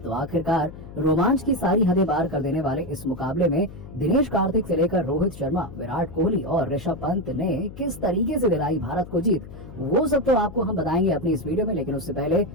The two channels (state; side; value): noise; left; hum, 15 dB below the sound